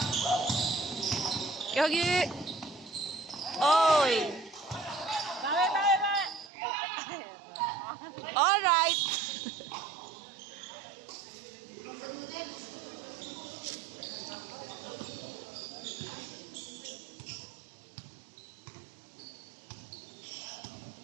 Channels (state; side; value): drops out; left; at 6.5 s